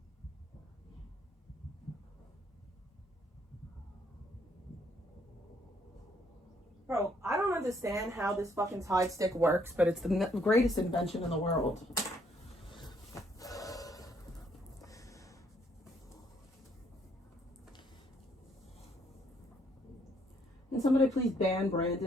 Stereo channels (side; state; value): both; normal; correlation 0.68